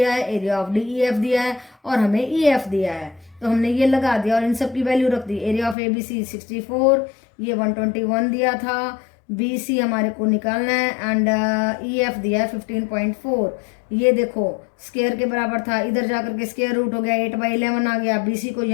है, एरिया ऑफ DEF दिया है, और हमें EF दिया है। तो हमने ये लगा दिया और इन सब की वैल्यू रख दी। एरिया ऑफ ABC 64, ये 121 दिया था, बी सी हमारे को निकालना है एंड ई एफ दिया है 15.4। ये देखो स्क्वायर के बराबर था, इधर जाकर के स्क्वायर रूट हो गया, 8/11 आ गया। बी सी को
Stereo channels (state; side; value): drops out; right; at 5.8 s